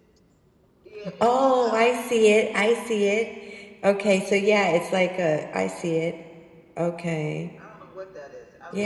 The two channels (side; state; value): both; identical; correlation 1.00